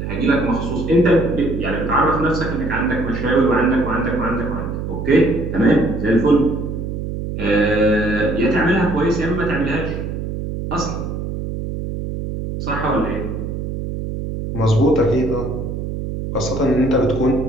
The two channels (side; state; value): right; noise; hum, 5 dB below the sound